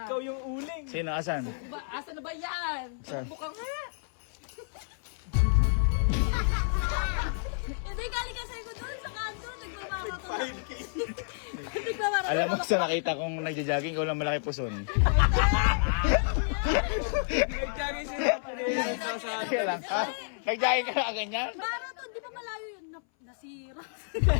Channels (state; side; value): silent; right; 58 dB below the other